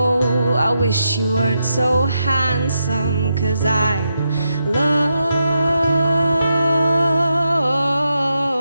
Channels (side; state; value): both; inverted; correlation -0.84